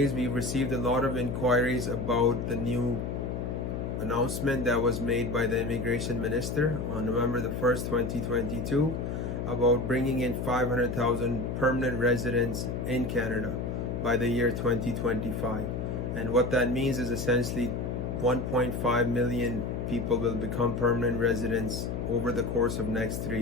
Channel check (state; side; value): noise; left; hum, 3 dB below the sound